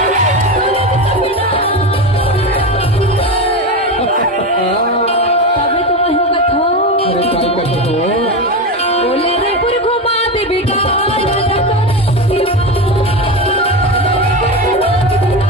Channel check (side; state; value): both; normal; correlation 0.19